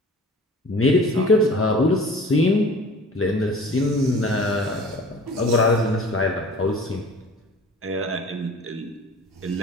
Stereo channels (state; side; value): normal; both; correlation 0.44